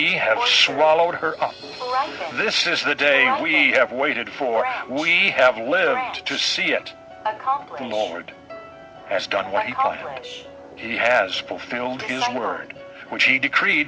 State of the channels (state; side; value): identical; both; correlation 1.00